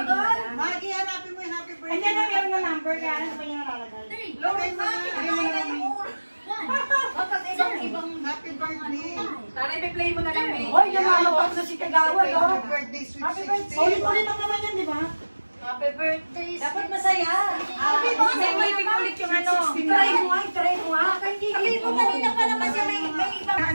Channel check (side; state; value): both; inverted; correlation -1.00